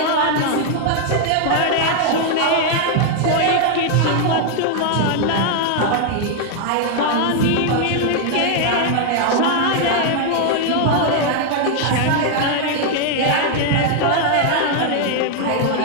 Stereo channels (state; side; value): different; both; correlation 0.00